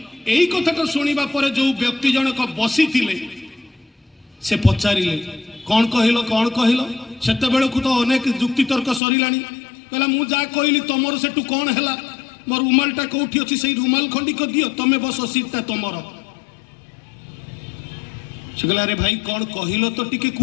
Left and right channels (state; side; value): drops out; right; at 9.0 s